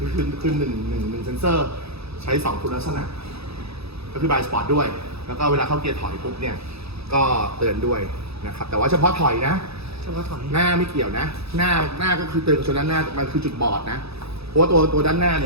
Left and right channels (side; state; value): left; late; 0.78 ms